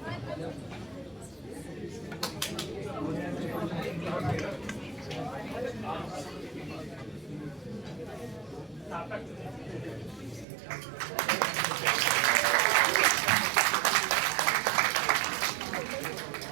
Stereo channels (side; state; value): left; drops out; at 10.5 s